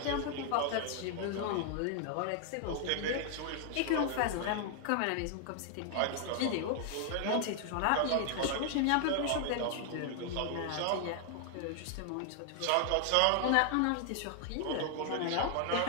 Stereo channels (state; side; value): different; both; correlation 0.00